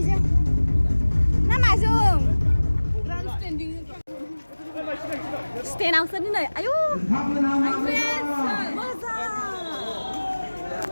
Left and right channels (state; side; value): inverted; both; correlation -1.00